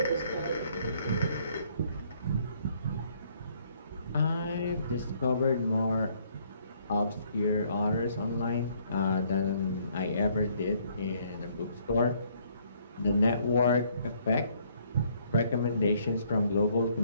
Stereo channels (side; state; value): both; inverted; correlation -0.66